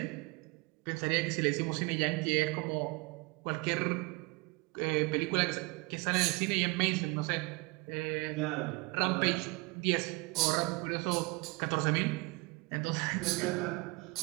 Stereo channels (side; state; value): left; quieter; 26.8 dB